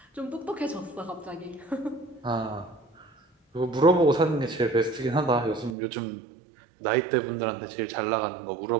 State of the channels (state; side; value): drops out; left; at 5.8 s